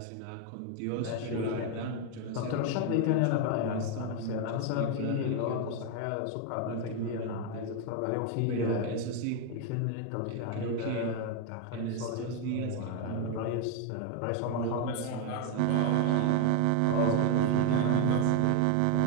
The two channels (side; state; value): both; different; correlation 0.01